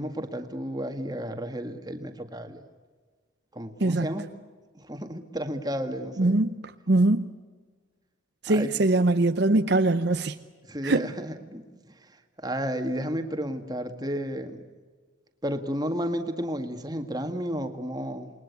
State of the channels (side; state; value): both; normal; correlation 0.60